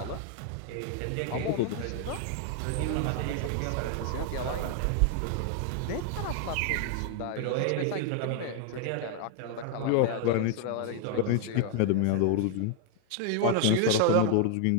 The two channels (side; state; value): both; different; correlation 0.00